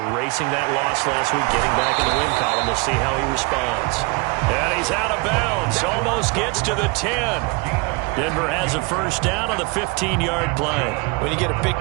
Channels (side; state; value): left; quieter; 28.2 dB